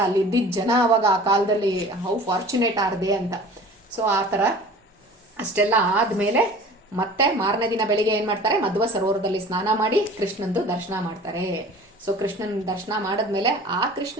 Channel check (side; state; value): both; normal; correlation 0.43